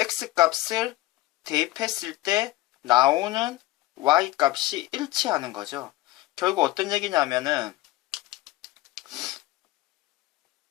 대입했을 때 나오는 y값이 일치하는 거죠. 결국 어떤 얘기냐면은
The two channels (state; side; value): quieter; right; 17.8 dB